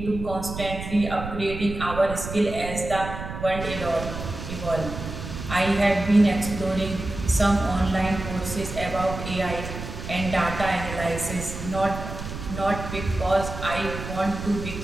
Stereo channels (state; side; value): noise; right; rumble, 8 dB below the sound